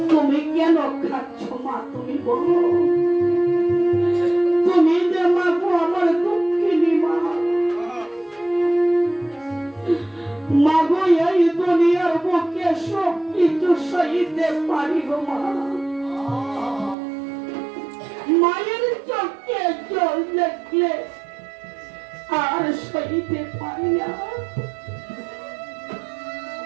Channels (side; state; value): left; drops out; at 16.9 s